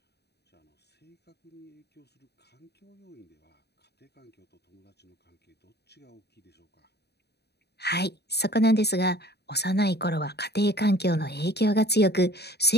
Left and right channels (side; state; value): right; late; 0.48 ms